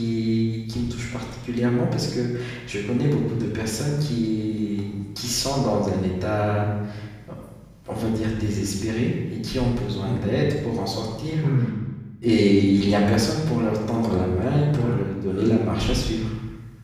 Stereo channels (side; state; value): both; identical; correlation 1.00